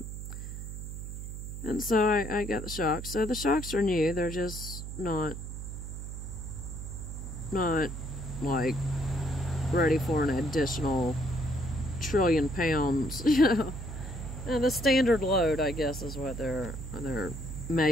And so I got the shocks. So the shocks are new. They're just not like ready for an additional trillion pounds, you know. And the standard load, I guess, is what they're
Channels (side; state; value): right; noise; hum, 8 dB below the sound